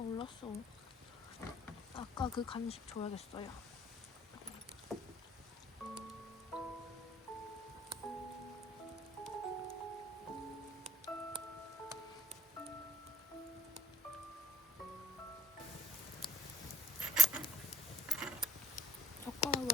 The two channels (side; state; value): both; normal; correlation 0.59